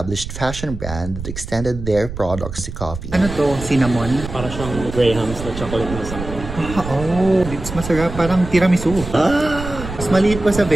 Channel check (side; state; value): right; noise; rumble, 9 dB below the sound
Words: fashion brand that extended their products to coffee. Ano to? Cinnamon? Para siyang Graham's na chocolate na something. Oh, it's masarap. Parang tiramisu. Mas maliit pa sa